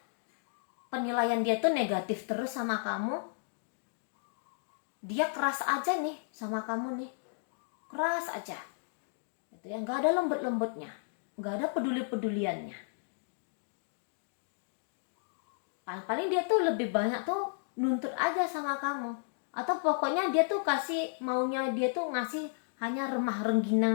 Penilaian dia tuh negatif terus sama kamu. Dia keras aja nih sama kamu nih. Keras aja. Gitu ya, nggak ada lembut-lembutnya. Nggak ada peduli-peduliannya. Paling dia tuh lebih banyak tuh nuntut aja sama kamu. Atau pokoknya dia tuh maunya dia tuh ngasih hanya remah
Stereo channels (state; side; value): silent; right; digital silence